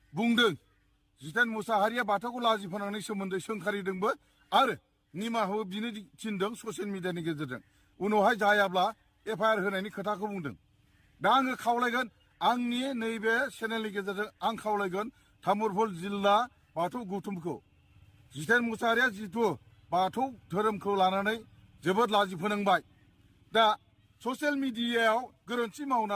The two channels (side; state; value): both; identical; correlation 1.00